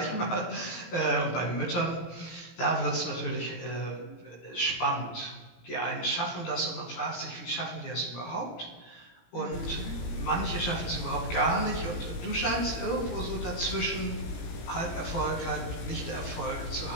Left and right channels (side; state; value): right; late; 18 ms